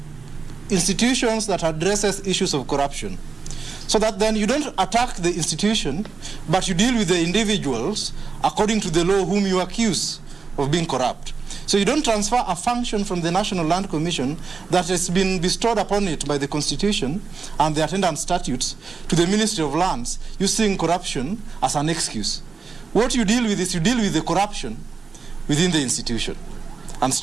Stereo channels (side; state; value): left; quieter; 4.9 dB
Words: institutions that addresses issues of corruption. So that then you don't attack the institution, but you deal with the individuals according to the law whom you accuse of being corrupt. So you don't transfer a function from the National Land Commission that has been bestowed upon it by the Constitution and the attendant statutes to the Ministry of Lands using corruption as an excuse. What you deal with is you deal with the corruption within the institution and